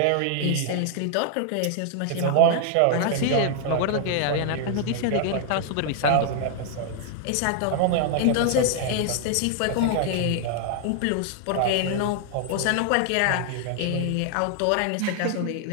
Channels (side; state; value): both; different; correlation 0.00